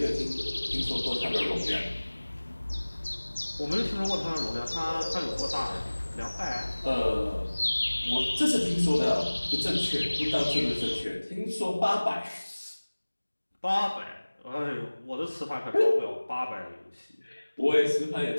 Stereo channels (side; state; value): both; inverted; correlation -1.00